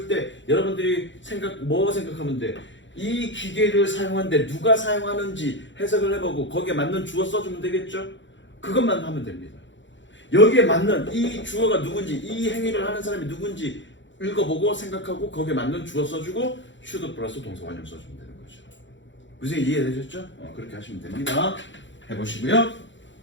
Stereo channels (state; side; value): late; right; 0.54 ms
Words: 때 여러분들이 뭐 생각하면 돼? 이 기계를 사용하는데 누가 사용하는지 해석을 해보고 거기에 맞는 주어 써주면 되겠죠? 그것만 하면 됩니다. 여기에 맞는 이 주어가 누군지 이 행위를 하는 사람이 누군지 읽어보고 생각하고 거기에 맞는 주어 써주고 should 플러스 동사 원형 써주면 되는 거죠. 무슨 이해되셨죠? 그렇게 하시면 됩니다. 해보시고요.